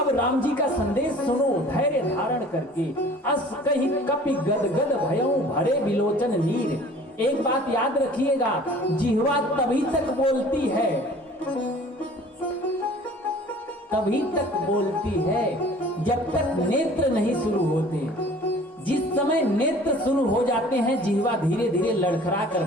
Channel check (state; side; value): normal; both; correlation 0.48